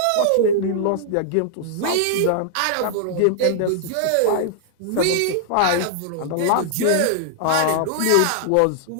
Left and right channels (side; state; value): both; different; correlation -0.01